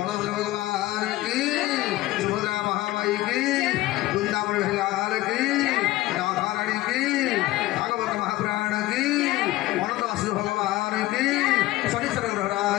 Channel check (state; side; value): quieter; right; 17.1 dB